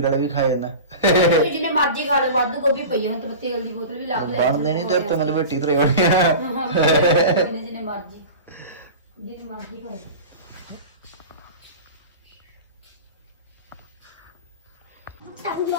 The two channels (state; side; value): inverted; both; correlation -0.33